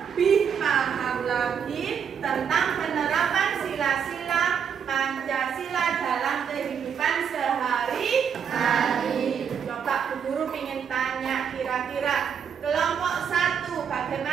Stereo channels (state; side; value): quieter; left; 7.5 dB